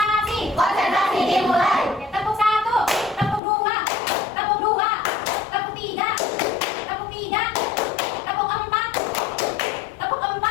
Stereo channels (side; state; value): right; drops out; at 3.4 s